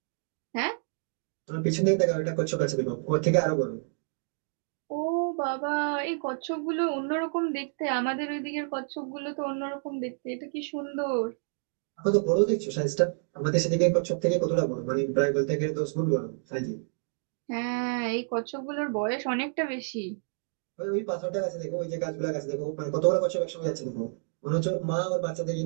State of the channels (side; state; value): left; silent; digital silence